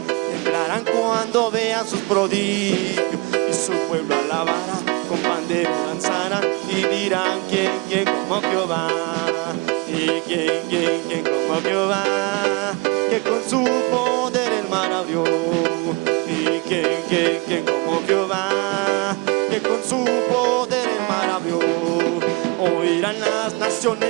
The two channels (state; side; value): quieter; left; 26.0 dB